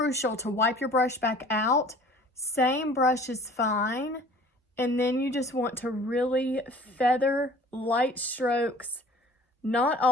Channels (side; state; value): both; normal; correlation 0.49